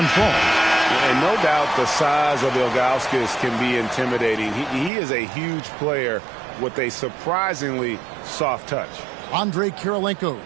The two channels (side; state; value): left; drops out; at 4.9 s